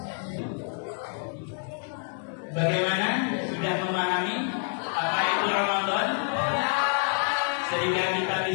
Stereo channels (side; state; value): right; silent; 55 dB below the other